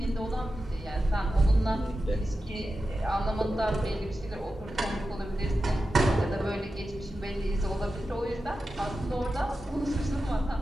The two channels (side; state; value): both; normal; correlation 0.92